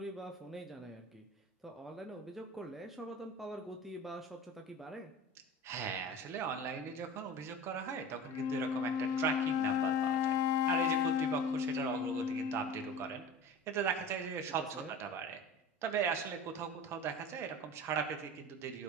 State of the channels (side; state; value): both; normal; correlation 0.35